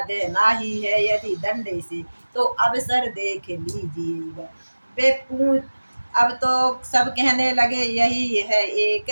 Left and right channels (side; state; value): both; inverted; correlation -1.00